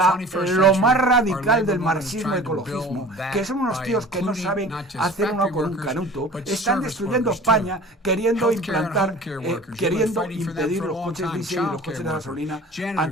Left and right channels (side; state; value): both; normal; correlation 0.43